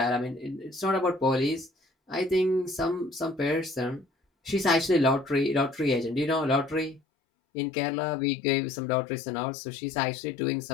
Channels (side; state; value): right; drops out; at 7.0 s